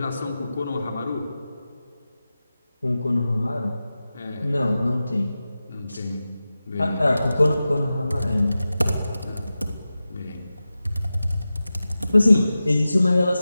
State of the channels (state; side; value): inverted; both; correlation -0.94